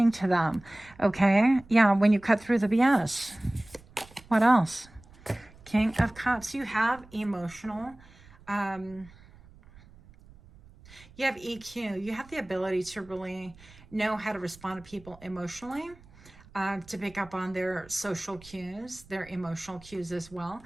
to them, okay? Yeah, when you cut through the BS. What else? King of Cups. You have emotional, you have EQ. You have the ability to really know how to respond to people emotionally, to pick up on their social cues, their emotional cues as well.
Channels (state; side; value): noise; right; rumble, 23 dB below the sound